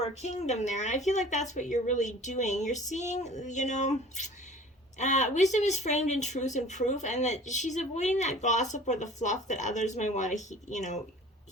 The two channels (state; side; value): normal; both; correlation 0.46